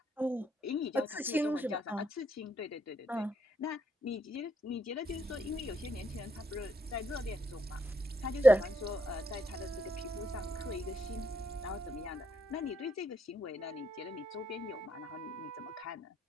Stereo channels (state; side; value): normal; both; correlation 0.76